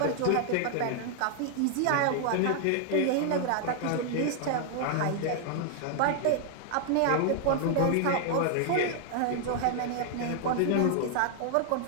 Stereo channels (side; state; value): both; different; correlation 0.00